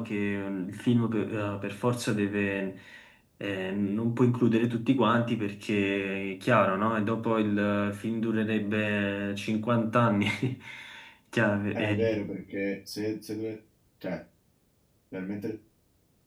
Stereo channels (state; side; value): identical; both; correlation 1.00